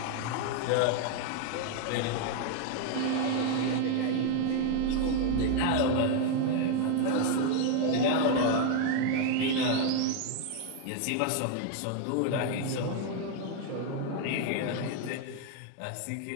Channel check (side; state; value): both; different; correlation 0.00